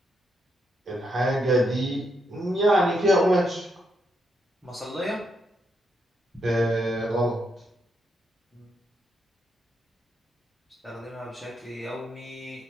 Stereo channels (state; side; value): normal; both; correlation 0.79